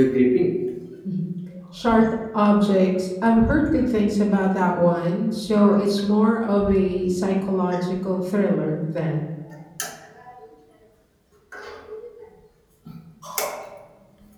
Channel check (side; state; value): both; identical; correlation 1.00